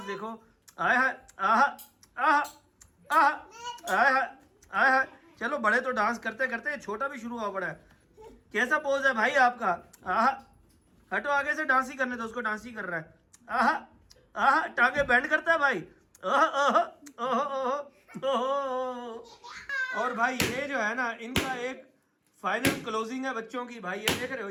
देखो। आय हाय आहा आहा आहा आय हाय आय हाय। चलो बड़े तो डांस करते करते छोटा भी शुरू हुआ पड़ा है। कैसा पोज है भाई आपका? आहा हटो आगे से, डांस ही करने दो उसको, डांस ही कर रहा है। आहा आहा टांगे बैंड करता है भाई। ओह ओह ओह ओह। और भाई ये जो है ना इनका एक फाइनल क्लोजिंग है बच्चों की भाई। ये देख रहे हो,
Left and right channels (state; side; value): identical; both; correlation 1.00